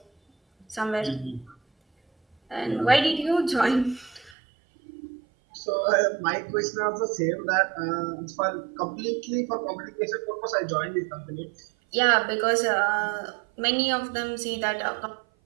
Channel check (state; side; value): drops out; left; at 4.4 s